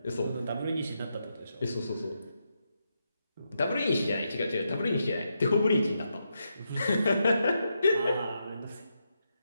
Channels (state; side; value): inverted; both; correlation -0.83